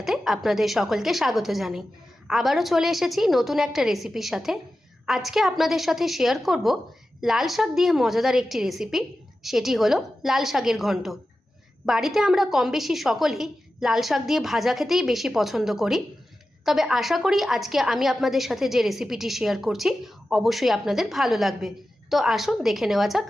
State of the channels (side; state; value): both; normal; correlation 0.93